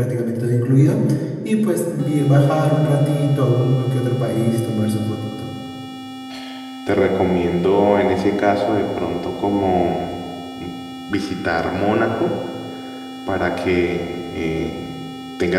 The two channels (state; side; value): identical; both; correlation 1.00